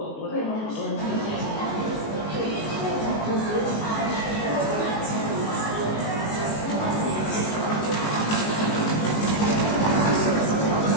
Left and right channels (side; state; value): right; late; 19 ms